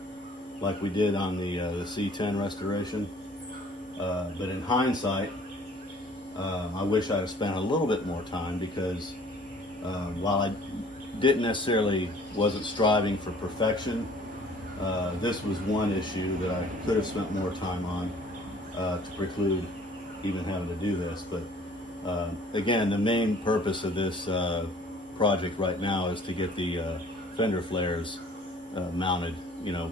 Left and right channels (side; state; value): both; normal; correlation 0.53